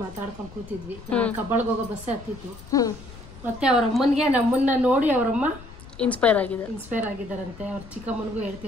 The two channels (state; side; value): noise; left; rumble, 17 dB below the sound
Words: ಮಾತಾಡ್ಕೊಂಡು ಕೂತಿದ್ವಿ. ಕಬ್ಬಾಳ್ಗೆ ಹೋಗೋ ಬಸ್ಸೇ ಹತ್ತಿತ್ತು. ಮತ್ತೆ ಅವ್ರ ಅಮ್ಮನಿಗೆ ನಮ್ಮನ್ನ ನೋಡಿ ಅವರಮ್ಮ ಇನ್ಸ್ಪೈರ್ ಆಗಿದ್ದಾರಂತೆ. ಅವ್ರ ಚಿಕ್ಕಮ್ಮನಿಗೂ